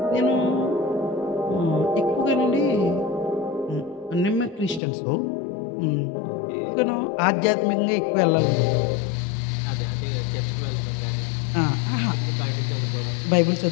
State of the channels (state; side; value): drops out; right; at 4.8 s